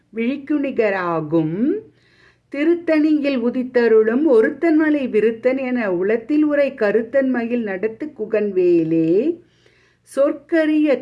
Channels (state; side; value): identical; both; correlation 1.00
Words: விழிக்குணிகராகும். திருத்தணியில் உதித்தருளும் ஒருத்தன்மலை விருத்தன் என உலத்தில் உரை கருத்தன்மையில் நடத்து குகன் வேலே. சொற்கரிய